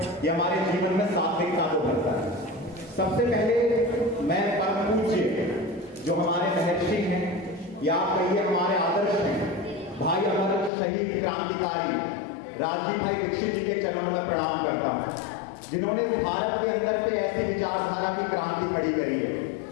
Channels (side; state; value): right; drops out; at 10.7 s